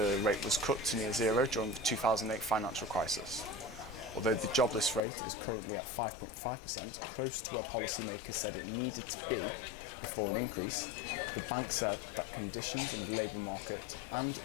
rate was cut to near zero during the 2008 financial crisis. Although the jobless rate is currently at 5.5%, close to where policymakers said it needed to be before an increase, the bank said that conditions in the labour market and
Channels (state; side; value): drops out; right; at 5.0 s